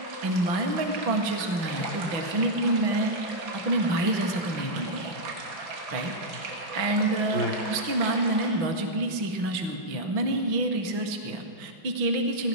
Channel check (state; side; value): late; left; 6.0 ms